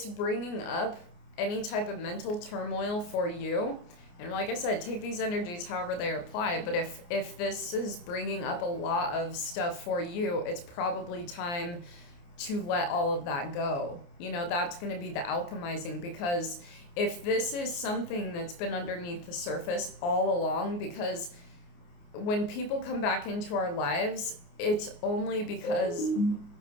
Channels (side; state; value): right; late; 29 ms